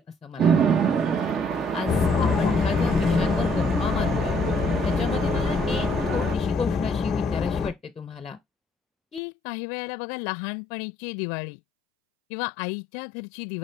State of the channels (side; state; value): right; drops out; at 9.2 s